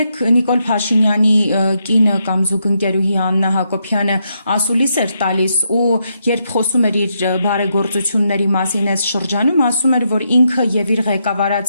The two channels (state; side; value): inverted; both; correlation -0.80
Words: Նիկոլ Փաշինյանի կինը կամ զուգընկերուհի Աննա Հակոբյանը ասուլիս էր տալիս ու երբ խոսում էր իր բարեգործությունների մասին այս շրջանում, ասում էր, որ ինքը եւ իր